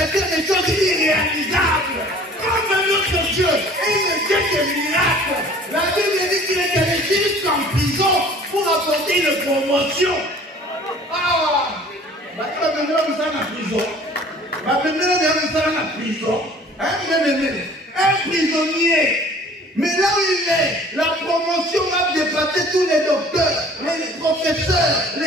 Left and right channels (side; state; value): both; normal; correlation 0.50